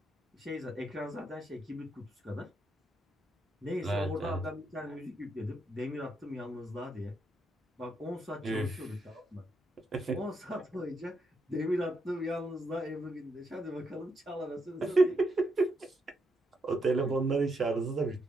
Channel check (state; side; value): normal; both; correlation 0.79